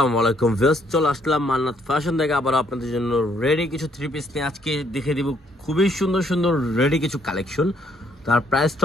আলাইকুম ভিউয়ার্স, চলে আসলাম মান্নাত ফ্যাশন থেকে আবার আপনাদের জন্য রেডি কিছু থ্রি পিস নিয়ে আজকে দেখে দিব খুবই সুন্দর সুন্দর রেডি কিছু কালেকশন। তার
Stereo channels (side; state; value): both; normal; correlation 0.68